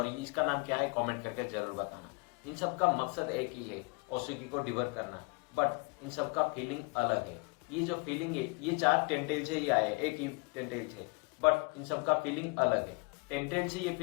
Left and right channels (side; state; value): right; quieter; 30.4 dB